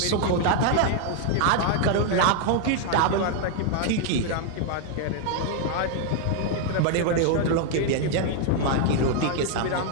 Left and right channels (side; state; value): both; different; correlation 0.00